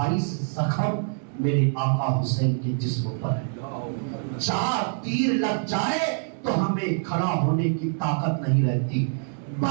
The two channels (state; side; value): silent; left; 61 dB below the other